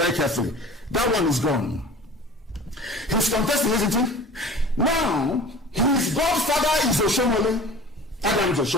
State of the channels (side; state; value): both; normal; correlation 0.41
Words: carefully. That one is gone. He's contesting, isn't he? Now, his godfather is Oshomole. Adam's